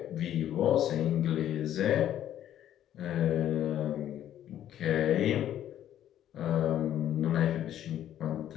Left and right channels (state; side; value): quieter; right; 11.4 dB